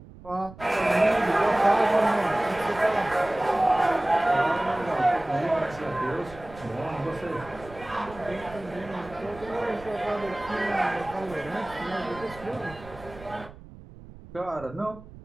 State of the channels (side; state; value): right; noise; rumble, 18 dB below the sound